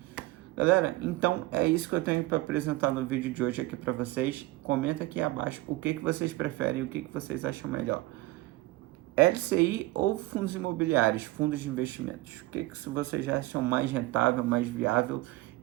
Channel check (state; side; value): quieter; left; 19.4 dB